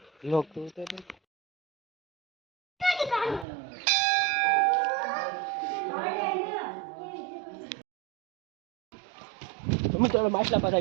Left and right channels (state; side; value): drops out; left; at 3.5 s